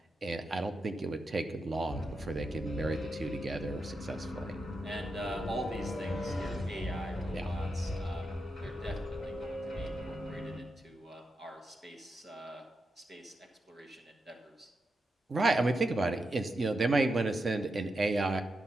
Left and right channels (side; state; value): both; normal; correlation 0.87